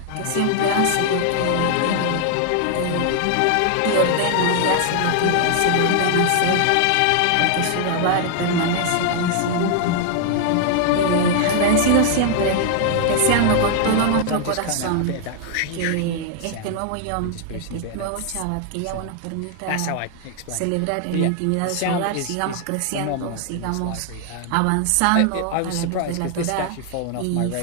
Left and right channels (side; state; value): both; different; correlation 0.00